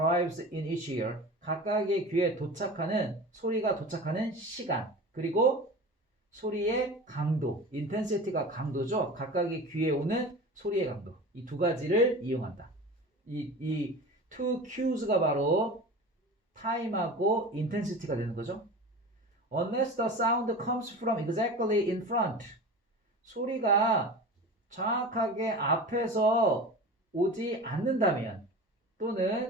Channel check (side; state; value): both; normal; correlation 0.34